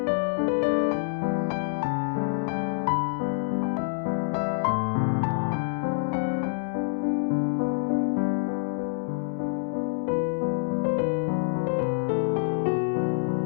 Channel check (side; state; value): right; silent; digital silence